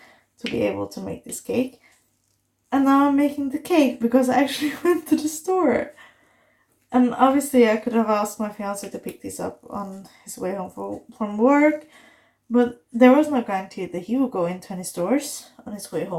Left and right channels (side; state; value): both; identical; correlation 1.00